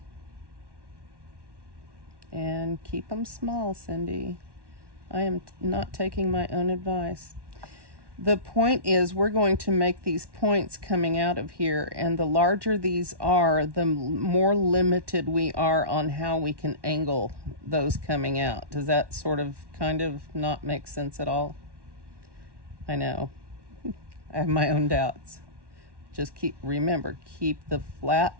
And keep them small, Cyndee. I am not taking my own advice. The point is, we're going to make these points coming out of here, and the larger these are, the more limited we are on how we can angle those coming out. Does that sort of kind of not make sense at all? I know. I have my own doubts. Just remember, keep the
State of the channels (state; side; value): late; left; 1.1 ms